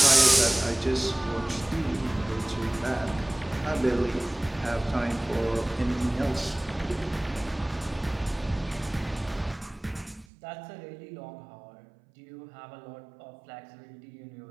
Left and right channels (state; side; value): drops out; left; at 10.2 s